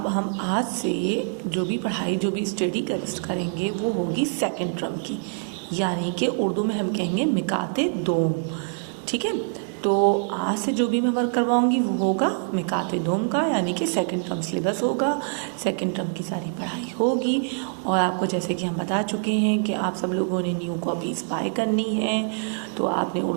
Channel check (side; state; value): left; silent; digital silence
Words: हम आज से जो भी पढ़ाई जो भी स्टडी करेंगे वो होगी सेकंड टर्म की, यानी कि उर्दू में हम कहेंगे मिकाते दोम। ठीक है, तो आज से जो भी मैं वर्क करवाऊंगी वो होगा मिकाते दोम का, यानी कि सेकंड टर्म सिलेबस होगा, सेकंड टर्म की सारी पढ़ाई होगी। और आपको जैसे कि हम बता चुके हैं कि आप सब लोगों ने न्यू कॉपीज़ बाय करनी है, तो आपने